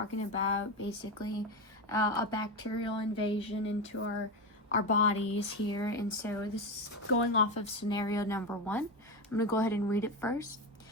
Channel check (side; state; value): both; normal; correlation 0.16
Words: about basically a bacterial invasion into our bodies here. And so this is going off of scenario number 1. I'm going to go ahead and read it first.